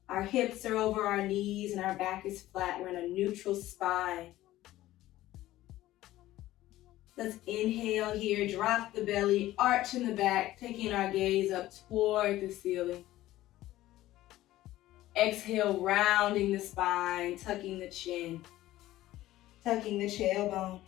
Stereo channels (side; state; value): right; quieter; 15.4 dB